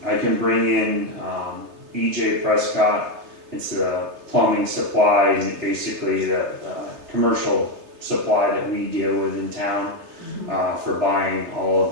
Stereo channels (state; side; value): late; left; 3.3 ms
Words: I can bring in, EJ Prescott. It's a plumbing supply, and basically the, commercial supply that we deal with in town, for buying all